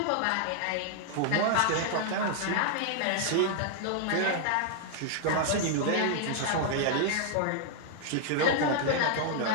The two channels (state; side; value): different; both; correlation -0.01